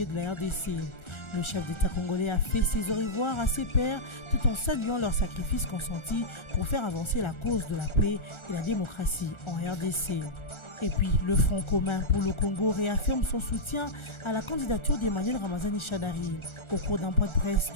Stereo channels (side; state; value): right; late; 1.4 ms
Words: de la RDC. Le chef d'État congolais a fait ses au revoir à ses pairs tout en saluant leurs sacrifices consentis pour faire avancer la cause de la paix et la démocratie en RDC. Et puis, le Front commun pour le Congo réaffirme son soutien à la candidature d'Emmanuel Ramazani Shadari. Au cours d'un point de presse